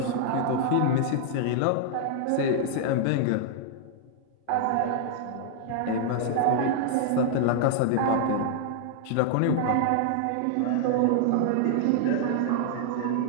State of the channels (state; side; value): different; both; correlation -0.01